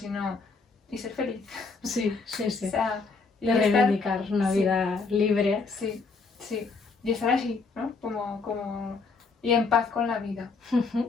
y ser feliz. Sí, sí, sí. O sea, y De estar- reivindicar una sí. vida libre. Sí, sí. Y estar así, ¿no? Y en paz con la vida,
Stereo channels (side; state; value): right; quieter; 4.4 dB